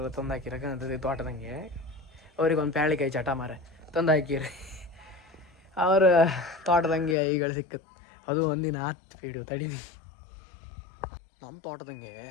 ತಂದು ಹಾಕಿರಕ್ಕಂತದ್ದು ತೋಟದಂಗೆ. ಅವ್ರಿಗೊಂದು ಪ್ಯಾಳಿಕಾಯಿ ಚಟ ಮರ ತಂದು ಹಾಕಿರಿ ಅವ್ರ ತೋಟದಂಗೆ ಈಗಳು ಸಿಕ್ಕತ್ತು. ಅದು ಒಂದಿನ ಹತ್ತು ಪೀಡು ತಡೀನಿ. ನಮ್ಮ ತೋಟದಂಗೆ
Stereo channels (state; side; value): drops out; right; at 7.2 s